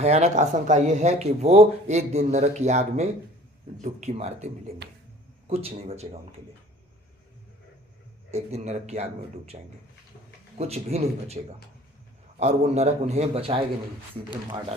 आशंका यह है कि वो एक दिन नरक की आग में डुबकी मारते मिलेंगे, कुछ नहीं बचेगा उनके लिए। एक दिन नरक की आग में डूब जाएंगे, कुछ भी नहीं बचेगा, और वो नरक उन्हें बचाएगा नहीं, सीधे मार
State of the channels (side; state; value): both; normal; correlation 0.49